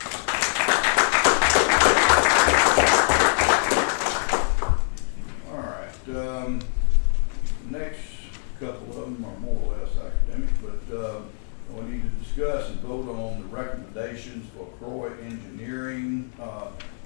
All right. Next couple of them are more or less academic, but we need to discuss and vote on the recommendations for Croy Engineering.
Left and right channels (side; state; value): right; silent; 59 dB below the other